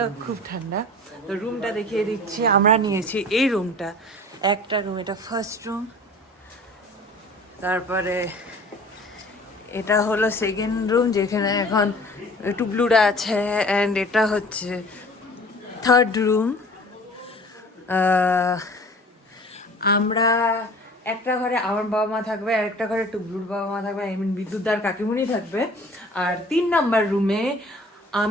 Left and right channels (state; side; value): normal; both; correlation 0.45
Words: খুব ঠান্ডা। তো রুমটা দেখিয়ে দিচ্ছি। আমরা নিয়েছি এই রুমটা, একটা রুম, এটা ফার্স্ট রুম। তারপরে এটা হলো সেকেন্ড রুম যেখানে এখন টুবলুরা আছে, অ্যান্ড এটা হচ্ছে থার্ড রুম। আমরা একটা ঘরে আমার বাবা মা থাকবে আর একটা ঘরে টুবলুর বাবা মা থাকবে, আই মিন বিদ্যুৎদার কাকিমুনি থাকবে। আর 3 নাম্বার রুমে